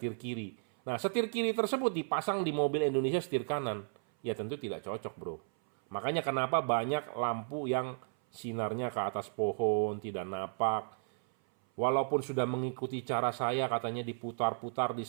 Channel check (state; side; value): silent; left; 55 dB below the other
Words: kiri. Nah, setir kiri tersebut dipasang di mobil Indonesia setir kanan. Ya tentu tidak cocok, bro. Makanya kenapa banyak lampu yang sinarnya ke atas pohon, tidak napak. Walaupun sudah mengikuti cara saya, katanya diputar-putar, di